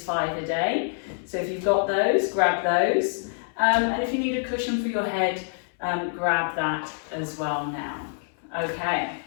5-A-Day. So if you've got those, grab those. And if you need a cushion for your head, grab that as well now. Okay,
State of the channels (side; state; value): right; silent; 61 dB below the other